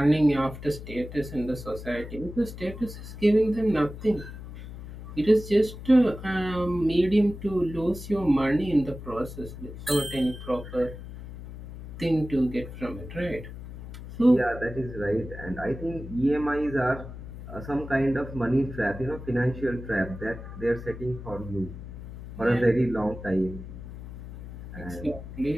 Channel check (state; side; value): noise; left; hum, 12 dB below the sound